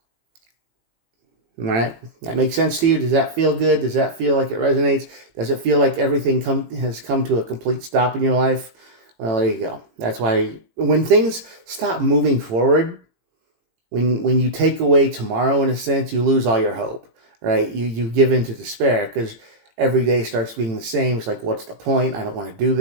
All right, that makes sense to you? Does that feel good? Does that feel like it resonates? Does it feel like everything has come to a complete stop in your life? Well, there you go. That's why when things stop moving forward, when you take away tomorrow, in a sense, you lose all your hope, right? You give into despair because every day starts being the same. It's like, what's the point? I don't want to do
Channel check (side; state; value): left; late; 18 ms